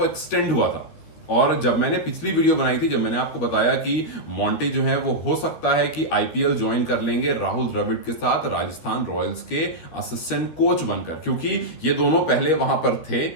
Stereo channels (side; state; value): right; late; 13 ms